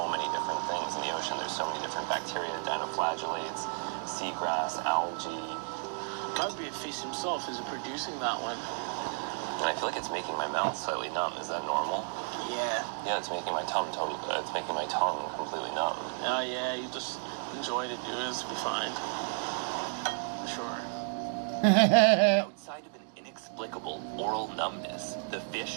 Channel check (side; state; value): left; silent; 56 dB below the other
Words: many different things in the ocean. There's so many different bacteria, dinoflagellates, seagrass, algae. Probably a fish himself is producing that one. And I feel like it's making my mouth slightly numb. Is that normal? Yeah. Yeah, it's making my tongue it's making my tongue completely numb. Oh yeah, you just enjoy it. It'll be fine. Sure. Outside of an inexplicable oral numbness, the fish